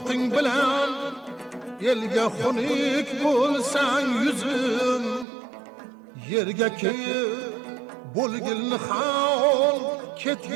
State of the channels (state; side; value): drops out; left; at 5.2 s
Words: bilan elga xunuk bo'lsang yuzim yerga kelib bo'lgilni hol